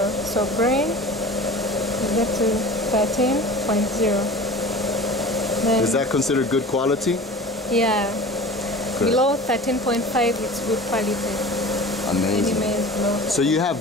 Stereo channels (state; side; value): normal; both; correlation 0.38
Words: So grain, we get to 13.0. Is that considered good quality? Yeah. Good. Below 13.5, it's good quality. Amazing. Any maize below. So you